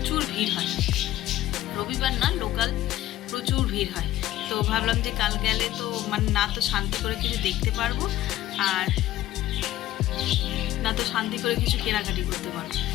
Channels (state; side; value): quieter; right; 14.4 dB